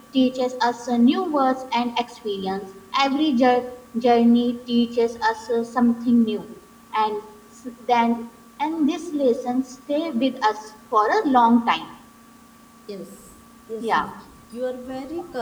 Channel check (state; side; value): identical; both; correlation 1.00